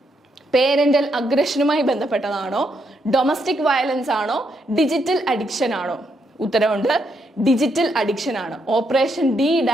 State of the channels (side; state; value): both; normal; correlation 0.78